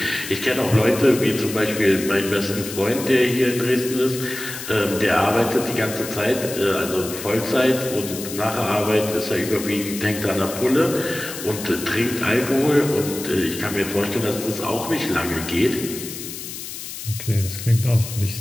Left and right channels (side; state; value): left; noise; hiss, 9 dB below the sound